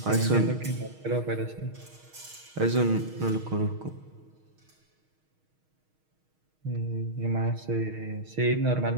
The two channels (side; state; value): left; late; 6.4 ms